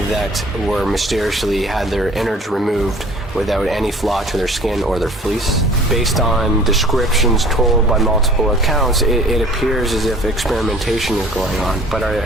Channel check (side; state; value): both; normal; correlation 0.49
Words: that were mysteriously had their innards removed without any flaw to their skin or their fleece. Based on descriptions told by multiple accounts, it appears as if experimentation is going on, but